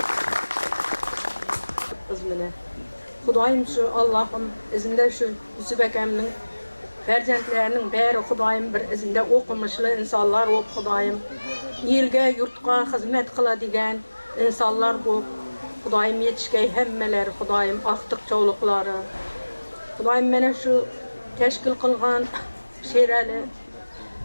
Bizmine. Xudoyim şu Allah'ım izinde şu Yusuf akamning farzandlarining bari Xudoyim bir izinde o'qimishli insonlar bo'lib, Xudoyim elga, yurtga xizmat qiladigan insonlar bo'lib, Xudoyim yetishgay hammalari, Xudoyim aqtiq cho'liqlari. Xudoyim mana shu tashkil qilgan Sherali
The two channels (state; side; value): inverted; both; correlation -1.00